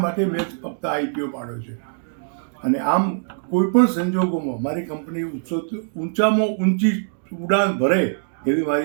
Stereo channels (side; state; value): left; silent; digital silence